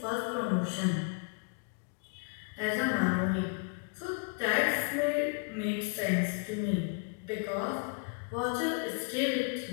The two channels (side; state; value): right; quieter; 35.5 dB